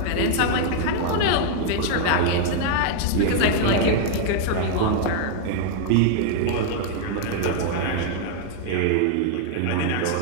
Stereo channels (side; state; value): both; different; correlation 0.00